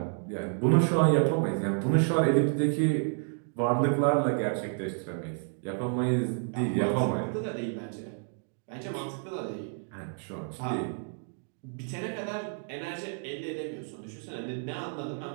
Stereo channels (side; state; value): left; silent; 55 dB below the other